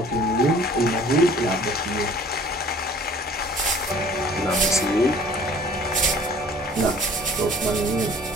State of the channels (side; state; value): both; normal; correlation 0.51